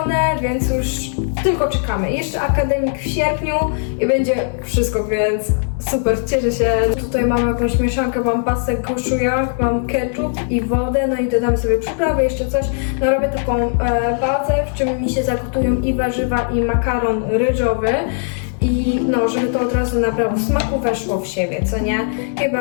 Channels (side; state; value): right; silent; 67 dB below the other